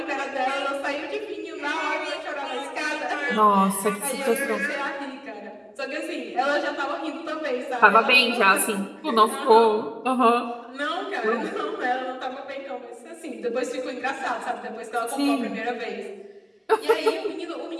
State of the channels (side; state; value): both; identical; correlation 1.00